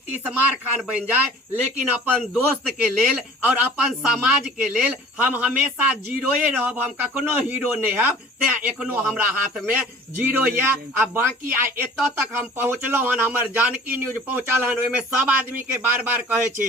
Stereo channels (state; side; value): normal; both; correlation 0.47